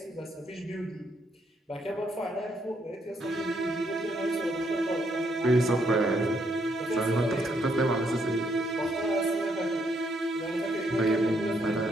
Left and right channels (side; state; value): both; normal; correlation 0.74